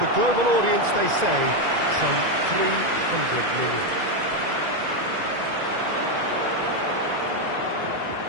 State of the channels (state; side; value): late; left; 2.0 ms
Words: global audience, they say, some 300 million.